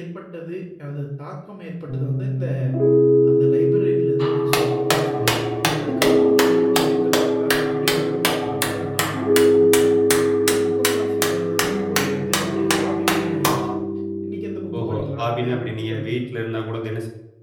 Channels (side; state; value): both; identical; correlation 1.00